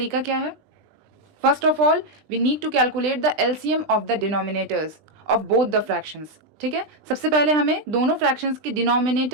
क्या है? First of all we need to calculate the LCM of the denominators of both the fractions. ठीक है, सबसे पहले हमें दोनों फ्रैक्शंस के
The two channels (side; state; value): left; late; 20 ms